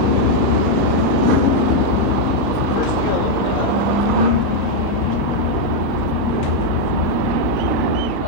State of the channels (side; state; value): right; late; 17 ms